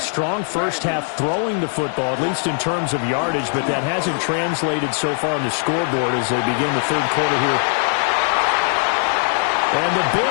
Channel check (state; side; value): silent; right; 65 dB below the other